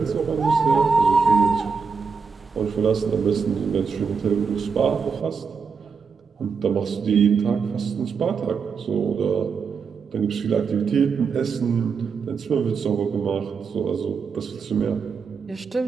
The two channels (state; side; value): quieter; left; 5.6 dB